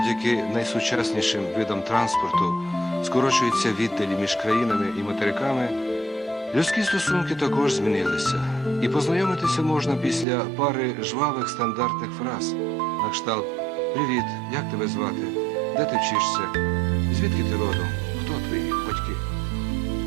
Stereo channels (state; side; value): drops out; left; at 10.2 s